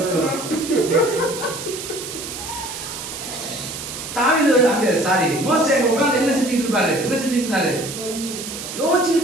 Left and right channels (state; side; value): noise; right; hiss, 8 dB below the sound